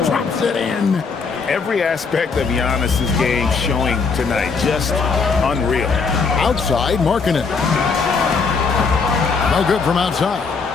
drops it in. Every aspect of Giannis's game showing tonight. Just unreal. Outside, Markkanen. No good from outside.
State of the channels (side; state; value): right; quieter; 5.0 dB